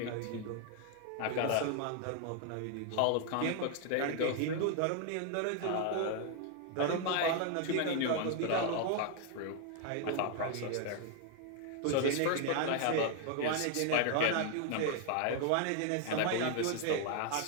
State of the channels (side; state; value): both; different; correlation 0.00